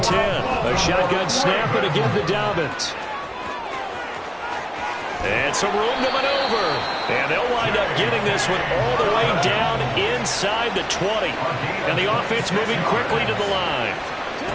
10. A shotgun snap, and again to Dobbins. And some room to maneuver. And they'll wind up getting this one all the way down inside the 20. And the offense moving quickly to the line.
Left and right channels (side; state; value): both; identical; correlation 1.00